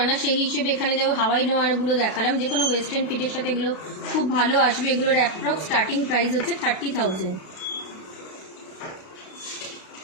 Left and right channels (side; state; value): right; late; 32 ms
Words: না, সেই হিসেবে এখানে যেমন হাওয়াই লোহাগুলো দেখালাম, যে কোনো ওয়েস্টার্ন ফিটের সাথে এগুলো খুব ভালো আসবে। এগুলোর অ্যাপ্রক্স স্টার্টিং প্রাইস হচ্ছে 30,000।